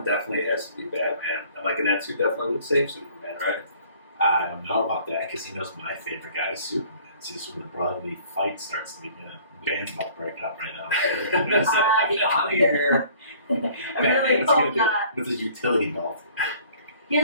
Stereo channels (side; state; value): both; inverted; correlation -0.53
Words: Definitely it has to be Batman. And like Anetsu definitely would save Superman, right? I don't know about that because he knows my favorite guy is Superman. See, when the brotherly fight starts to begin, the band's about to break up right now. I here. really hope not. With his utility belt. He